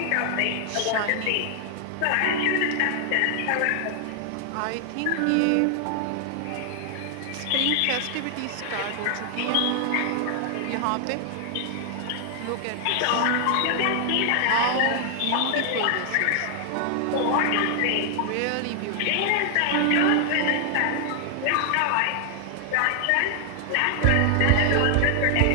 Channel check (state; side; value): different; both; correlation 0.00